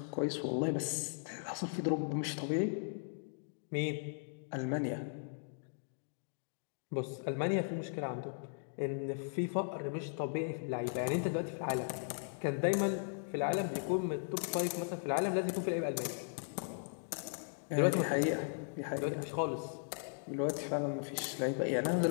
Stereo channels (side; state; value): right; silent; digital silence